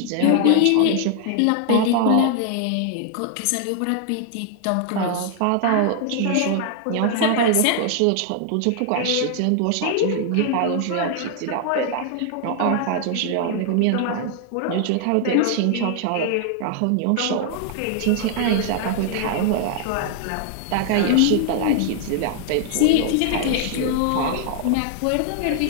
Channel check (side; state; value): both; different; correlation 0.00